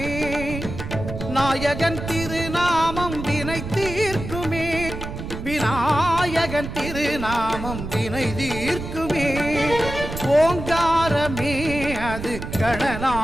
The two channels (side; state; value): right; noise; rumble, 8 dB below the sound